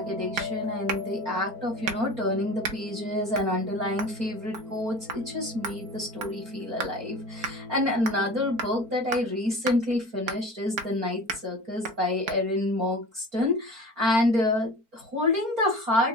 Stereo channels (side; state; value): left; late; 4.5 ms